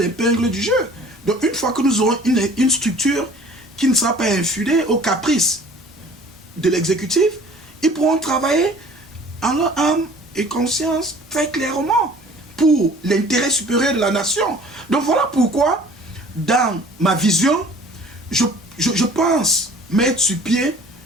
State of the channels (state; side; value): normal; both; correlation 0.49